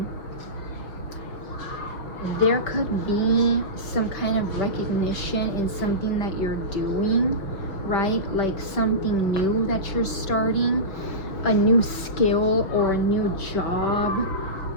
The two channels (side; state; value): right; late; 5.4 ms